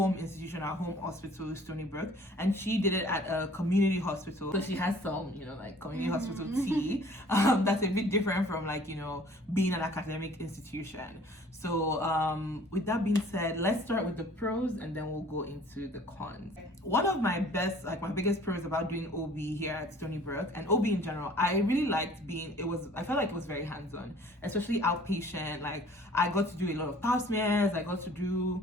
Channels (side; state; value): both; normal; correlation 0.52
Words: institution, our home hospital, Stony Brook, and she did it at a community hospital. So she has some, like community hospital tea. That's a bit different from being an academic institution. So with that being said, let's start with the pros and then we'll go into the cons. One of my biggest pros about doing OB here at Stony Brook, and OB in general, I really liked I felt like it was very hands-on, especially outpatient. Like I got to do a lot of pap smears, I got to